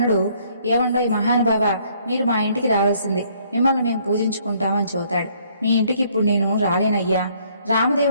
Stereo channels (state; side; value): inverted; both; correlation -0.64